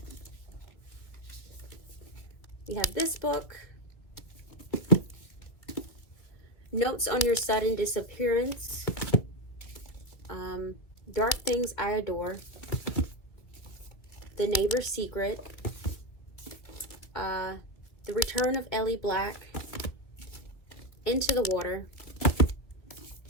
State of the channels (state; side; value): late; right; 2.3 ms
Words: We have this book, Notes on Your Sudden Disappearance, Dark Things I Adore, The Neighbor's Secret, The Return of Ellie Black, Into the Water,